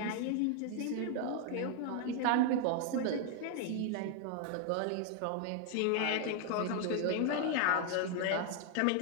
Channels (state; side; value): different; both; correlation 0.00